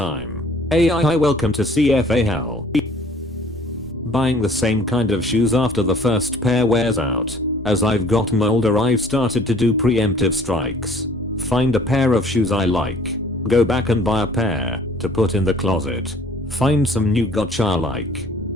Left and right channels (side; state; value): both; normal; correlation 0.54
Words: AI, welcome to CFA hell. Buying the same kind of shoes after the first pair wears out. As I've gotten older, I've started to do preemptive strikes. Find a pair of shoes I like. Go back and buy a pair to put in the closet. Find some new gotcha I like.